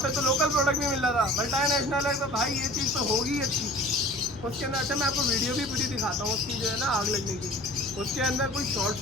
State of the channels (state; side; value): normal; both; correlation 0.44